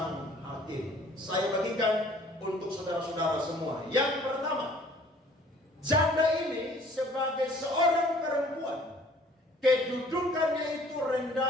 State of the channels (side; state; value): both; normal; correlation 0.54